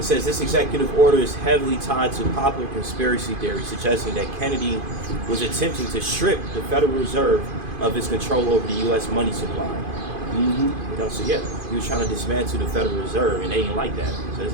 says this executive order is heavily tied to popular conspiracy theory suggesting that Kennedy was attempting to strip the Federal Reserve of its control over the U.S. money supply. So yeah, he was trying to dismantle the Federal Reserve, and they didn't like that. So they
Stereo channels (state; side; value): late; left; 2.5 ms